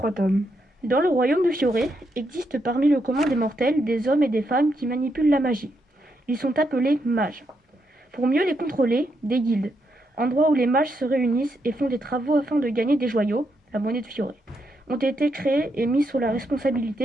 tomes. Dans le royaume de Fioré existe parmi le commun des mortels des hommes et des femmes qui manipulent la magie. Ils sont appelés mages. Pour mieux les contrôler, des guildes, endroits où les mages se réunissent et font des travaux afin de gagner des joyaux, la monnaie de Fioré. ont été créés et mis sous la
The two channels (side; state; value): both; normal; correlation 0.80